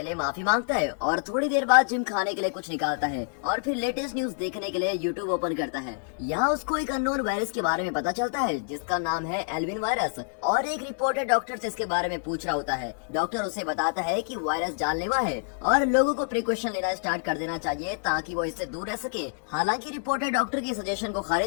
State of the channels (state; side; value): silent; right; digital silence